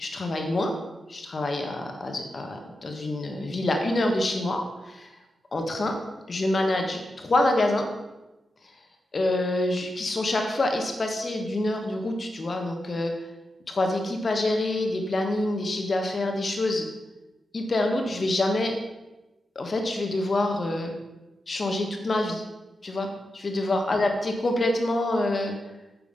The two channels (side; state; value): both; normal; correlation 0.89